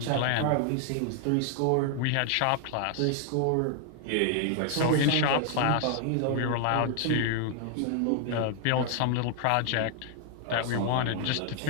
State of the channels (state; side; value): different; both; correlation 0.00